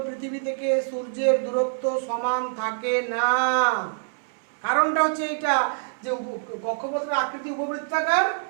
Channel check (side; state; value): left; silent; 62 dB below the other